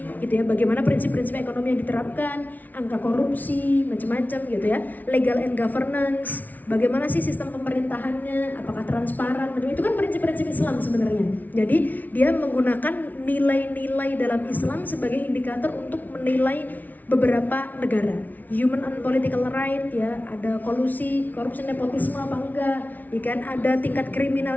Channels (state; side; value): late; right; 0.079 ms